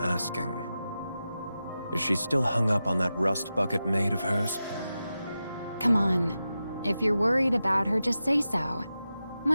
Is she still hung up on that rust bucket maid of hers? Come on. If you're worried about her, just say so.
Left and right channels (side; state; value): both; inverted; correlation -0.92